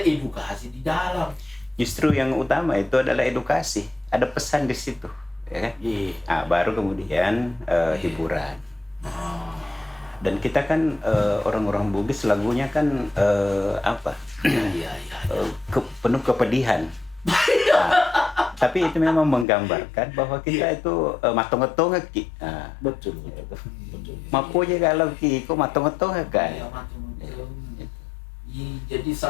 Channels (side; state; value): right; drops out; at 19.5 s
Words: di dalam. Justru yang utama itu adalah edukasi, ada pesan di situ, ya kan? Nah, baru kemudian hiburan. Dan kita kan orang-orang Bugis lagunya kan penuh kepedihan. Tapi itu memang menggambarkan bahwa kita itu matong-matong ki. Betul. Mapo je kalau ki ko matong-matong kan. Jadi